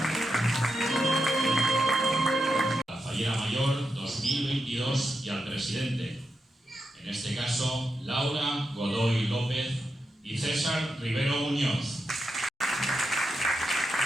Mayor 2022 y al presidente, en este caso Laura Godoy López y César Rivero Muñoz.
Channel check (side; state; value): both; normal; correlation 0.87